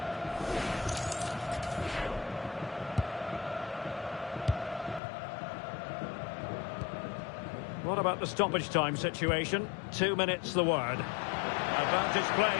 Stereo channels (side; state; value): right; drops out; at 5.0 s